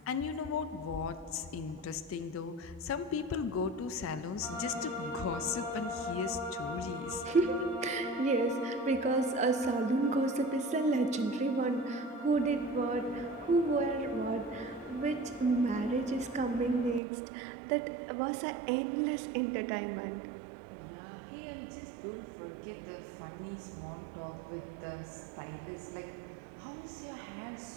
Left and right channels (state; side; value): drops out; left; at 17.0 s